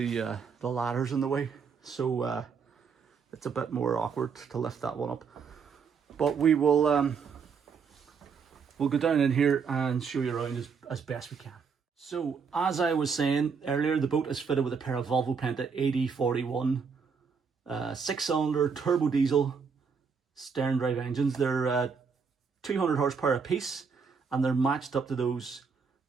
ladder's in the way. So it's a bit more awkward to lift that one up. But we will we'll go down in here and show you around as best we can. So as I was saying earlier, the boat is fitted with a pair of Volvo Penta 8041 6-cylinder turbo diesel stern drive engines. They're 200 horsepower a piece, and they're matched up to those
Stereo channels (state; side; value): quieter; left; 5.8 dB